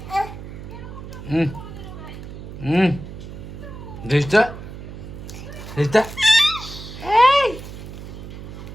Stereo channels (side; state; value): right; noise; hum, 11 dB below the sound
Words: হুম হুম। দেশটা দেশটা।